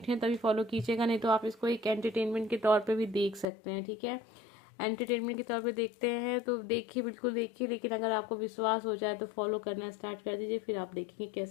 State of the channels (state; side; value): drops out; right; at 3.5 s